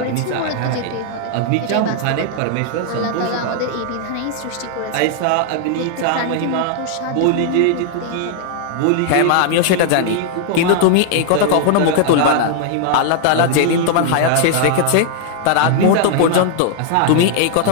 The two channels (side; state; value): both; different; correlation -0.01